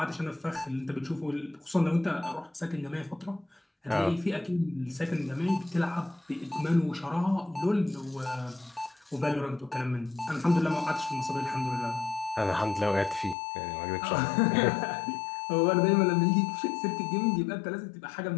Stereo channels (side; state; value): right; drops out; at 13.4 s